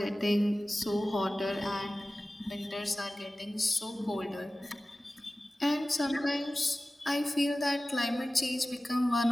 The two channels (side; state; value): both; normal; correlation 0.96